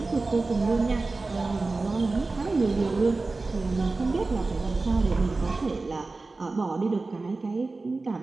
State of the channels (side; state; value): left; quieter; 3.6 dB